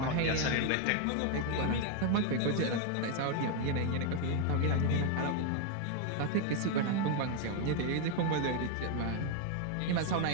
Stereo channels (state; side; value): different; both; correlation 0.01